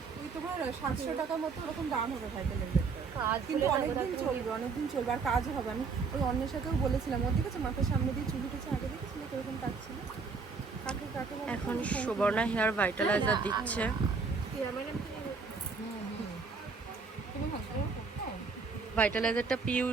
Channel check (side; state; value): left; quieter; 4.8 dB